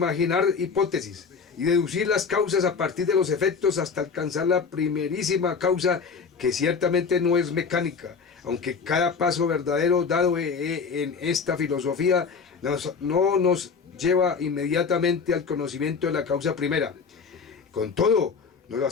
hipótesis y deducir las causas a partir de los efectos hasta alcanzar la primerísima causa, que ciertamente no es mecánica, aunque cada paso verdadero dado en esta filosofía no nos lleva inmediatamente al conocimiento de la causa primera. Con todo, nos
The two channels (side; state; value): right; quieter; 5.5 dB